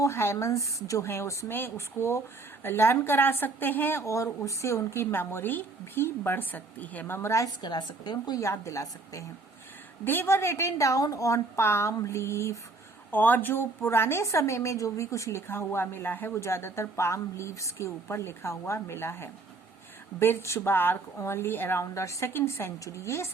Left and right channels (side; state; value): left; quieter; 3.5 dB